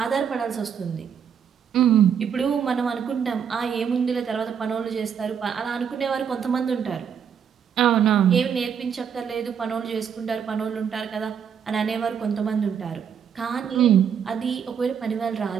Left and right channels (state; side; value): quieter; left; 7.6 dB